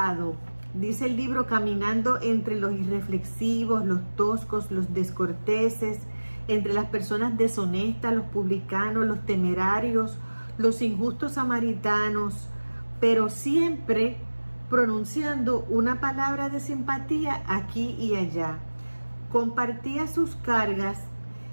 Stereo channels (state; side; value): inverted; both; correlation -1.00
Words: Dice el libro, caminando entre los irreflexivos, los toscos, los descorteses, entre las personas deshonestas, los publicanos, los temerarios, los injustos samaritanos, pero siempre pronunciando una palabra de simpatía aquí y allá. Compartía sus cargas